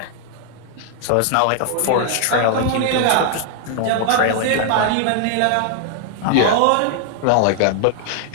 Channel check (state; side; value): different; both; correlation 0.00